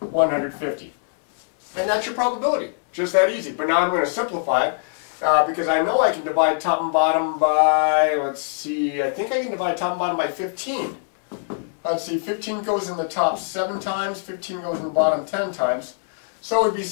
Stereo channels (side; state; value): right; silent; 64 dB below the other